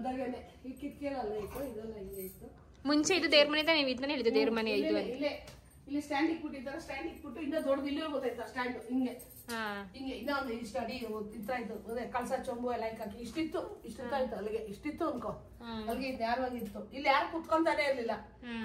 ಈ ಕಿಟಕಿಯಲ್ಲ ಇತ್ತು, ಇದೆಲ್ಲ ಹಿಂಗೆ ಇತ್ತು. ಮುಂಚೆ ಇದು ದೇವ್ರ ಮನೆ ನೀವು ಇದನ್ನ ಹೇಳಿದ್ದು, ದೇವ್ರ ಮನೆ ಇದು ಇಲ್ಲೇ. ಇಲ್ಲಿ ಸ್ಟ್ಯಾಂಡ್ ಇಟ್ಬಿಟ್ಟಿದ್ದಾರೆ. ಸ್ಟ್ಯಾಂಡ್ ಇಟ್ಬಿಟ್ಟು ಇನ್ನೂ ದೊಡ್ಡದು ಇಲ್ಲೇ ಗೊತ್ತಾಯ್ತಾ ಸ್ಟ್ಯಾಂಡ್ ಹಿಂಗೆ ಇನ್ನೂ ಒಂದು ಇಷ್ಟ ಅಡಿ ಇತ್ತು. ಅದೇ ಕಳ್ಸ ಚೊಂಬು ಎಲ್ಲ ಹಾಕಿ ಇಷ್ಟಿತ್ತು ಅಲ್ಲಿಗೆ ಇಷ್ಟಿತ್ತು ಅನ್ಕೋ. ಅಲ್ಲಿಗೆ ನೇರವಾಗಿತ್ತು. ಇಲ್ಲಿ ಯಾರು ಕುತ್ಕೊಂತಾನೆ ಇರ್ಲಿಲ್ಲ.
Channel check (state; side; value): identical; both; correlation 1.00